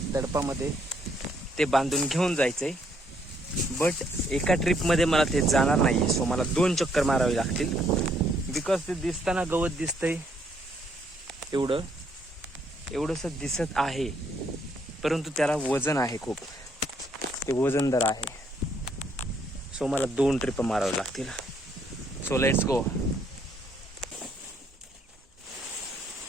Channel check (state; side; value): normal; both; correlation 0.70